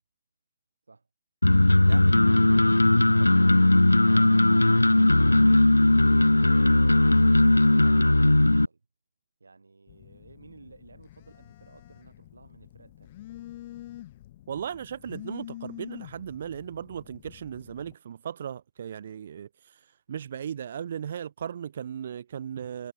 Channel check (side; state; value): both; inverted; correlation -0.99